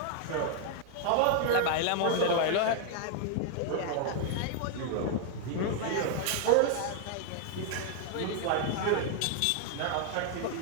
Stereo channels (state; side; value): different; both; correlation 0.00